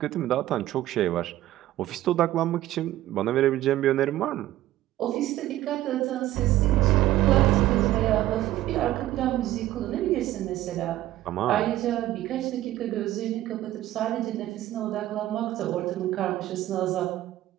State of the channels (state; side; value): quieter; left; 14.7 dB